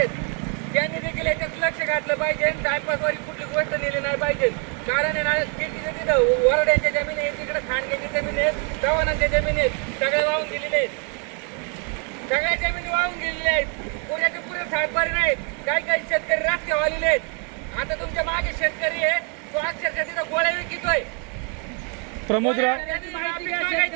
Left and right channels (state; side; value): quieter; left; 38.2 dB